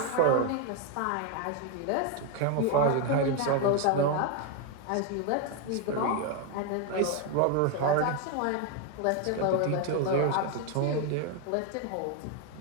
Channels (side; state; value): both; different; correlation 0.01